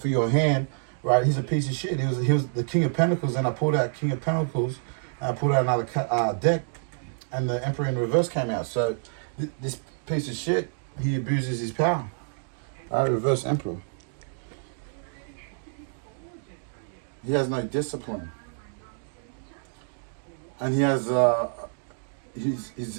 your hand, right? He's a piece of shit. He was the King of Pentacles, and I pulled out King of Pentacles, and I pulled out another deck, and the Emperor in reverse came out. So this piece of shit, he abuses his power. Right? Reverse Emperor. He has no discipline. And he has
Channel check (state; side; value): silent; left; digital silence